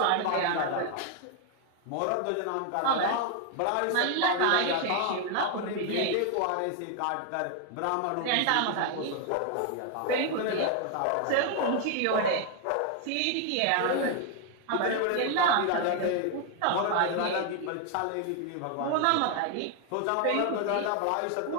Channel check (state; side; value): different; both; correlation 0.01